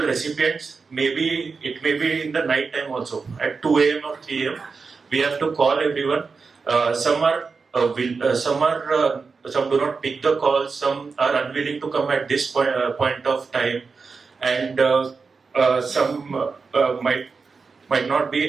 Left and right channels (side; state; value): left; quieter; 4.8 dB